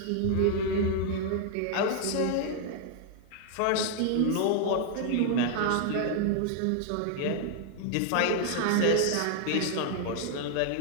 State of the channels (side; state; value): both; different; correlation 0.00